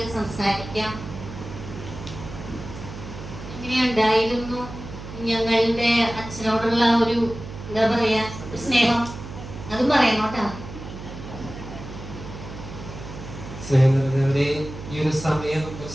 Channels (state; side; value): noise; right; hum, 11 dB below the sound